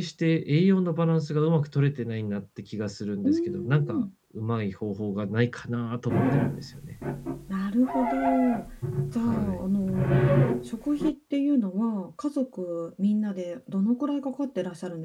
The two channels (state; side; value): identical; both; correlation 1.00